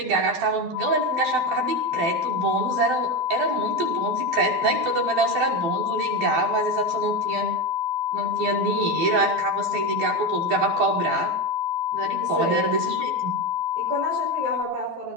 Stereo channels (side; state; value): left; late; 12 ms